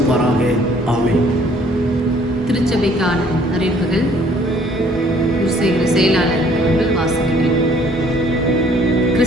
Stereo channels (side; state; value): both; normal; correlation 0.59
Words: ஆமென். திருச்சபைக்கான அறிவிப்புகள் செயலாளர் அவர்கள் வாசிக்கிறேன்.